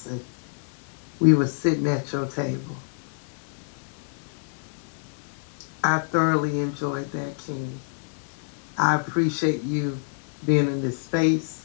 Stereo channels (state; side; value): silent; right; digital silence